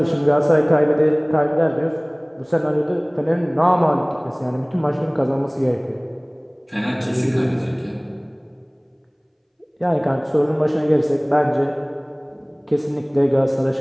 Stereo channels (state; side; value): identical; both; correlation 1.00